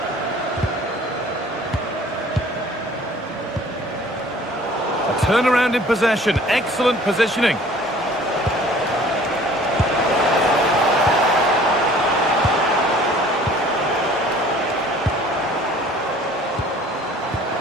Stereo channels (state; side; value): normal; both; correlation 0.51